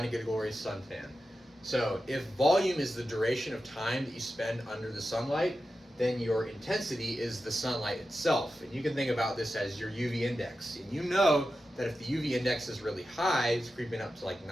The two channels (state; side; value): normal; both; correlation 0.91